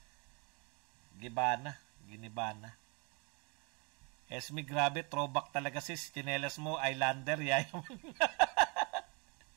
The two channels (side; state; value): left; quieter; 31.6 dB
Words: Ginibana. Esme, grabe, throwback talaga sis. Chinelas mo, Islander, yayaman.